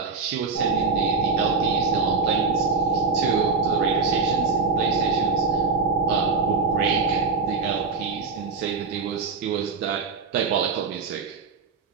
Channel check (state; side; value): quieter; left; 4.5 dB